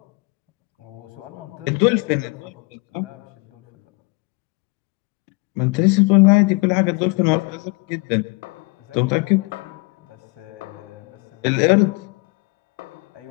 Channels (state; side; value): quieter; right; 28.6 dB